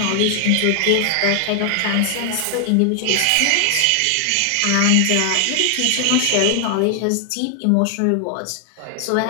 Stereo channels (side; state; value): both; different; correlation 0.00